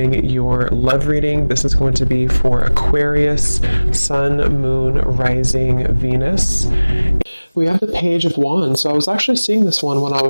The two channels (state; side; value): inverted; both; correlation -1.00